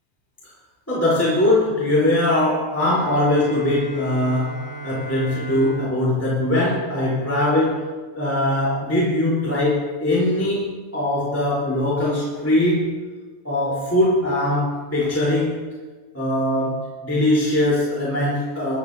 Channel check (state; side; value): normal; both; correlation 0.18